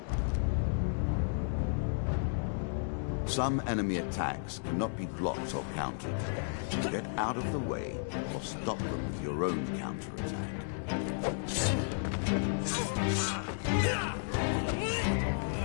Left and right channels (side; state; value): right; silent; digital silence